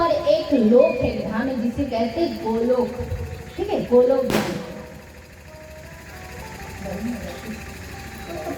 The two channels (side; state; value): both; identical; correlation 1.00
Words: एक लोक है, धाम है जिसे कहते हैं गोलोक, ठीक है, गोलोक धाम।